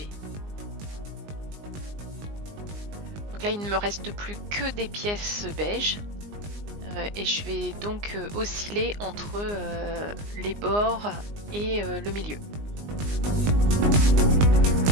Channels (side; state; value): left; late; 19 ms